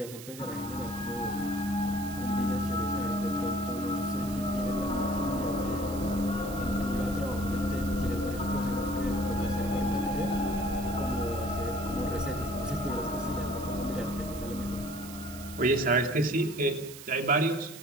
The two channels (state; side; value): noise; right; hiss, 14 dB below the sound